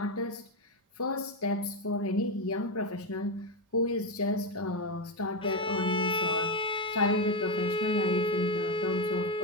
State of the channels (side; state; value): both; normal; correlation 0.09